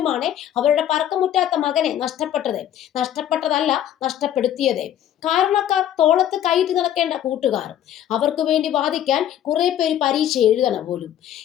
അവരുടെ പറക്കമുറ്റാത്ത മകനെ നഷ്ടപ്പെട്ടതല്ല നഷ്ടപ്പെടുത്തിയത്. കാരണക്കാർ തോളത്ത് കൈയിട്ട് നടക്കേണ്ട കൂട്ടുകാർ, അവർക്ക് വേണ്ടി വാദിക്കാൻ കുറെ പേര് പരീക്ഷ എഴുതണം പോലും.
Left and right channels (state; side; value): quieter; right; 11.0 dB